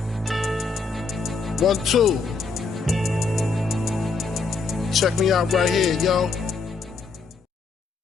1, 2. Check me out right here, yo.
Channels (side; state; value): right; quieter; 4.4 dB